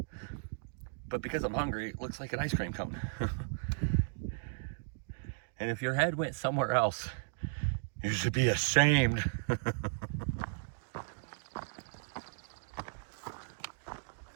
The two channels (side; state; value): left; silent; digital silence